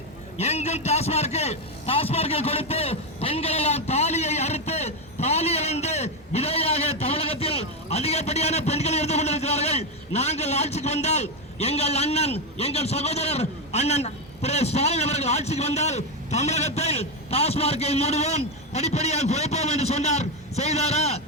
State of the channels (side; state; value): both; normal; correlation 0.08